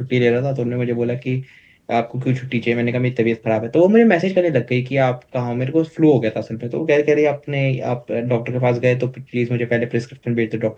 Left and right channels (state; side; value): identical; both; correlation 1.00